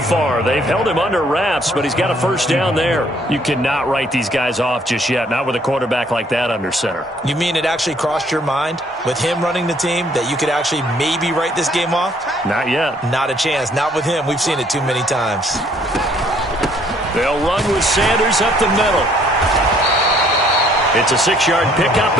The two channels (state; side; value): normal; both; correlation 0.63